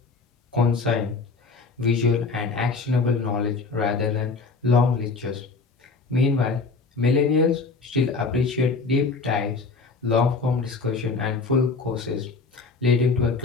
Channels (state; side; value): quieter; right; 4.2 dB